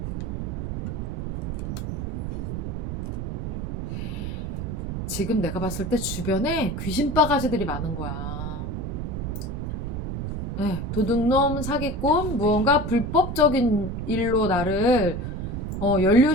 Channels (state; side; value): noise; right; rumble, 3 dB below the sound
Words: 지금 내가 봤을 때 주변에 귀신 바가지들이 많은 거야. 네, 도둑놈, 사기꾼, 무언가 불법적인 일로 나를